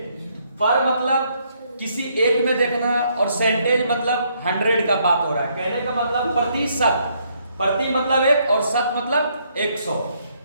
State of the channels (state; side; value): inverted; both; correlation -0.71